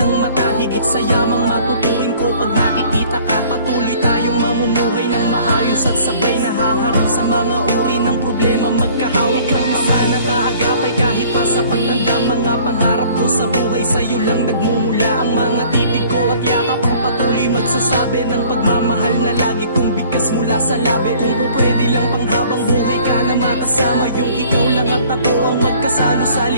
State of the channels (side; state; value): both; inverted; correlation -0.53